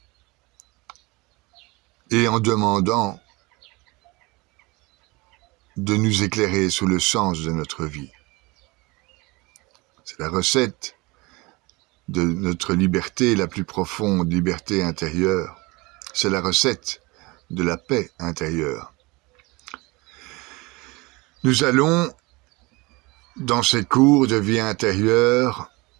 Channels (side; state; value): left; quieter; 24.3 dB